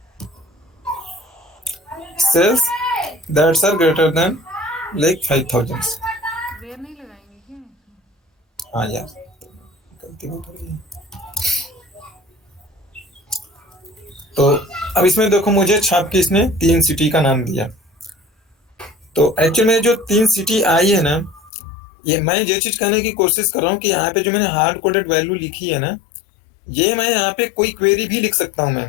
sales that's are greater than like 5000। Where नहीं लगाएंगे क्या? हाँ यार गलती हो रही है। तो अब इसमें देखो मुझे छाप के इसने 3 सिटी का नाम दिया। तो एक्चुअली में जो 3 सिटी आई है ना, ये मैं ये चीज कहने की कोशिश कर रहा हूँ कि यहाँ पे जो मैंने हार्ड कोडेड वैल्यू लिखी है ना, ये मैं यहाँ पे कोई क्वेरी भी लिख सकता हूं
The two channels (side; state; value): right; drops out; at 21.5 s